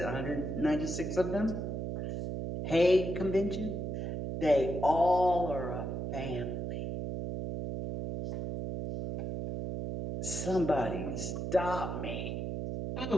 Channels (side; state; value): right; noise; hum, 3 dB below the sound